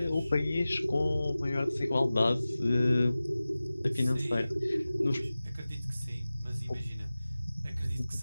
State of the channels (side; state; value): both; inverted; correlation -0.97